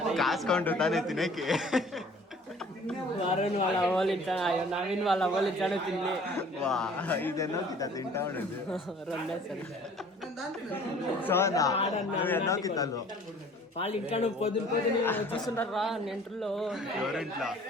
కాసుకుంటు తానే తినేకి. వరుణ్ వాళ్ళ అవ్వాలి నవీన్ వాళ్ళ అవ్వాలి తిని వా ఇదెన్నో కితా తింటా ఉండదు. రెండే సరే సోనా నువ్వు ఎన్నో కితాలు వాళ్ళు ఇంకా నువ్వు పొద్దున చూస్తుంటారు రా నెంటర్లో ఎవరింట్లో.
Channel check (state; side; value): normal; both; correlation 0.51